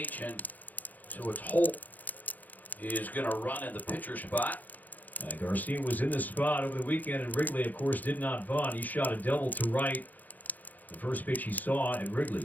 and so it's Holt is going to run in the pitcher spot. Garcia was in the spot over the weekend, and Wrigley, of course, did not bunt. He shot a double to right. The first pitch he saw at Wrigley.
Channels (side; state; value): right; late; 0.082 ms